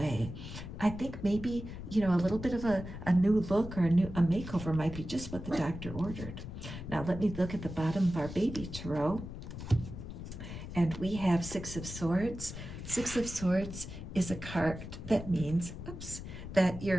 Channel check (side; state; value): left; noise; rumble, 9 dB below the sound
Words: I think maybe, you know, a little bit of a new look or a makeover might be just what the doctor ordered. Now let me look at the bottom of our baby tarot. And we have Six of Swords. Six of Swords is a card that means, that